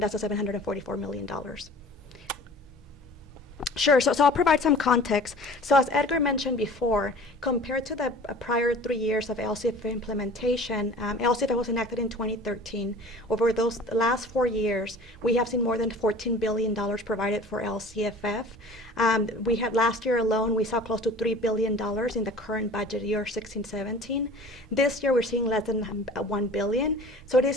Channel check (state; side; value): normal; both; correlation 0.44